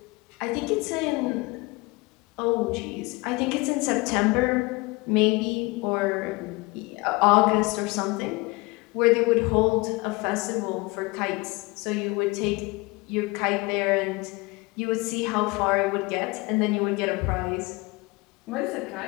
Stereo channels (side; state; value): right; quieter; 24.5 dB